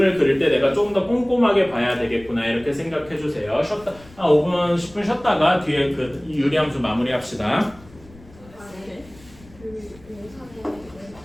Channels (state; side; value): noise; left; rumble, 23 dB below the sound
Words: 그릴 때 내가 조금 더 꼼꼼하게 봐야 되겠구나 이렇게 생각해 주세요. 한 5분 10분 쉬었다가 뒤에 그 유리함수 마무리합시다.